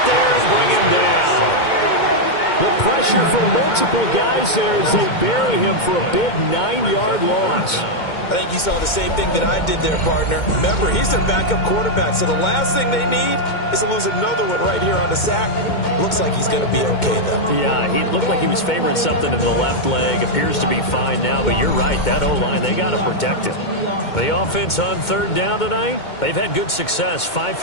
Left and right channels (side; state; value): right; late; 2.2 ms